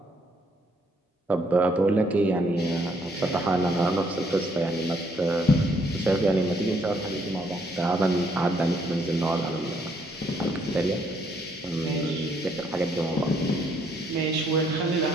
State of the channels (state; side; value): normal; both; correlation 0.69